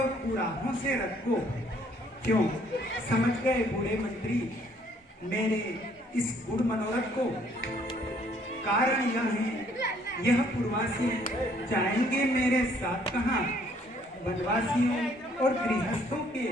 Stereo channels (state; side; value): normal; both; correlation 0.63